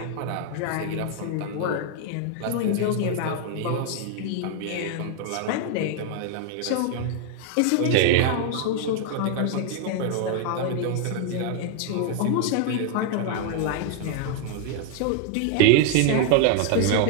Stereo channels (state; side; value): different; both; correlation 0.00